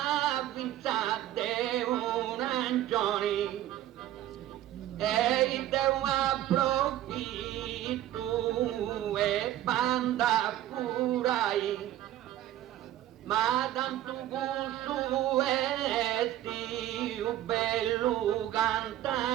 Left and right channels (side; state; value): left; quieter; 13.3 dB